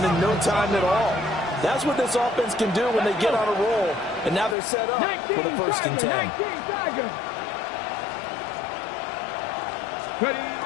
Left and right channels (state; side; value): drops out; right; at 4.5 s